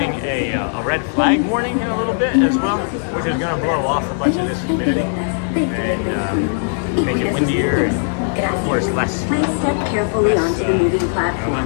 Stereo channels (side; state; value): right; silent; 64 dB below the other